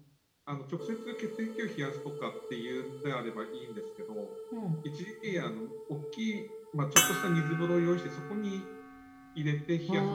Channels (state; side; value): identical; both; correlation 1.00